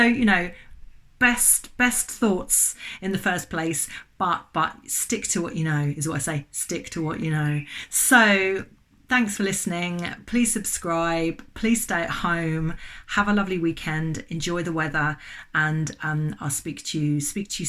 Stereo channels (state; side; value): identical; both; correlation 1.00